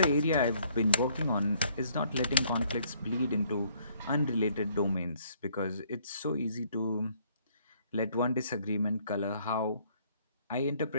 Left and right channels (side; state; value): both; inverted; correlation -0.64